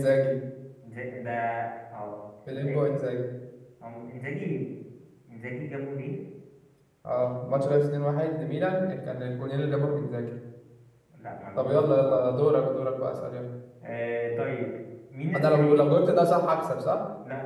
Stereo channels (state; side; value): identical; both; correlation 1.00